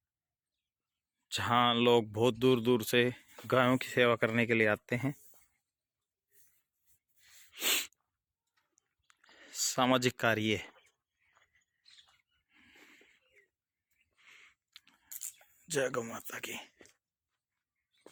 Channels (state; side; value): identical; both; correlation 1.00